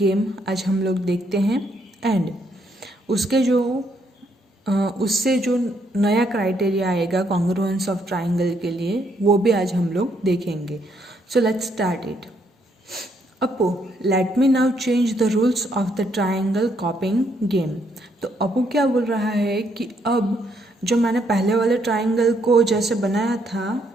आज हम लोग देखते हैं एंड उसके जो उससे जो नया क्राइटेरिया आएगा कॉन्ग्रुएंस ऑफ ट्राइंगल के लिए वो भी आज हम लोग देखेंगे. So let's start it. Apu, let me now change the rules of the triangle copying game. तो अपू क्या बोल रहा है कि अब जो मैंने पहले वाले ट्राइंगल को जैसे बनाया था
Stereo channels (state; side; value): normal; both; correlation 0.73